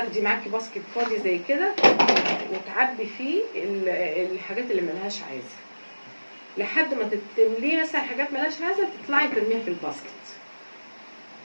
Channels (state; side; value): inverted; both; correlation -1.00